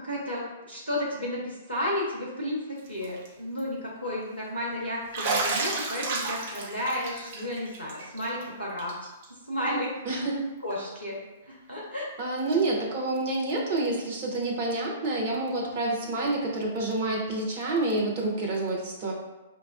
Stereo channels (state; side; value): inverted; both; correlation -0.36